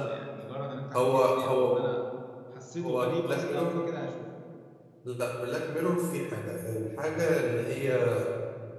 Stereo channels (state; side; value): identical; both; correlation 1.00